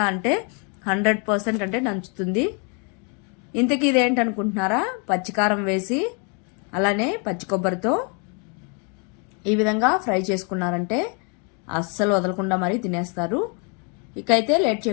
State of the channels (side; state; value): right; quieter; 36.4 dB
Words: అంటే 100% అంటే నంచుతుంది. ఇంతకీ ఇదేంటనుకుంటున్నారా? పచ్చికారం వేసి అలానే పచ్చి కొబ్బరితో ఈ విధంగా ఫ్రై చేసుకున్నారంటే అస్సలు వదలకుండా మరీ తినేస్తారు. ఇకైతే లేట్